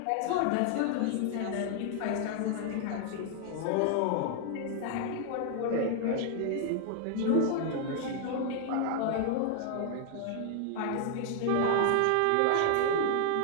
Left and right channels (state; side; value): different; both; correlation 0.00